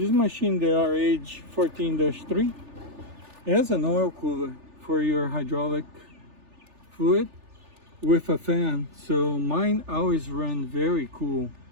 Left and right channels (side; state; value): left; late; 3.4 ms